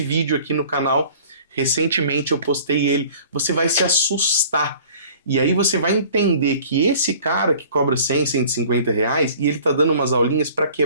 aqui no canal. Recentemente eu postei ele. Você vai se assustar. E aí você vai entender que esse cara que cobra 100, 150 reais, e ele está dando umas aulinhas para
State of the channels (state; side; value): inverted; both; correlation -0.49